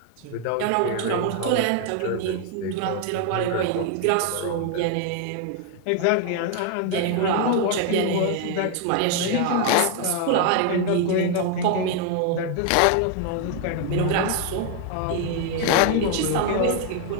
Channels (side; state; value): both; different; correlation 0.00